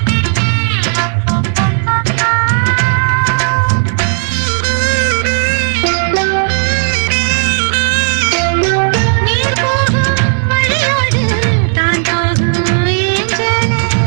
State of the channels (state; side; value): silent; left; digital silence